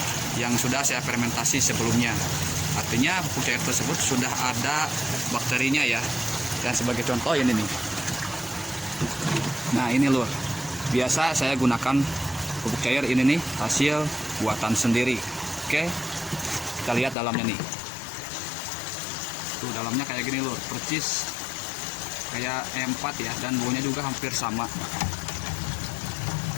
yang sudah saya fermentasi sebelumnya. Artinya pupuk cair tersebut sudah ada bakterinya ya. Dan sebagai contoh ini nih. Nah ini lur, biasa saya gunakan pupuk cair ini nih, hasil buatan sendiri. Oke, kita lihat dalamnya nih. Tuh dalamnya kayak gini lur, percis kayak M4 ya, dan baunya juga hampir sama.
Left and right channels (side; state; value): right; drops out; at 17.2 s